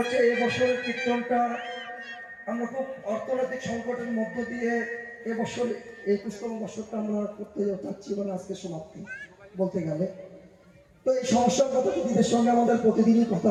এবছরের কীর্তনটা আমরা খুব অর্থনৈতিক সংকটের মধ্য দিয়ে এবছর 21তম বছরটা আমরা করতে যাচ্ছি, মানে আজকে সমাপ্তি বলতে গেলে। তো এই সমস্যার কথা দিদিদের সঙ্গে আমাদের প্রতিদিনই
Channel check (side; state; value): both; identical; correlation 1.00